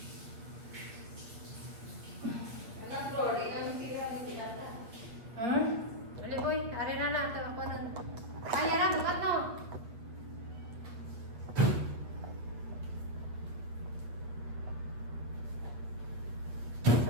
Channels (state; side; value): late; left; 8.4 ms